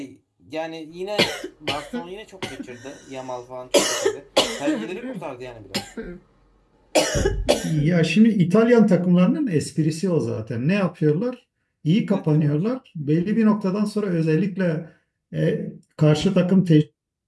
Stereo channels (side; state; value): both; identical; correlation 1.00